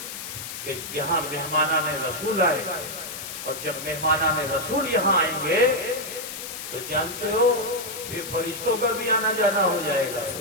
کہ یہاں مہمانان رسول آئے، اور جب مہمانان رسول یہاں آئیں گے تو جانتے ہو یہ فرشتوں کا بھی آنا جانا ہو جائے گا۔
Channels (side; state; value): left; noise; hiss, 8 dB below the sound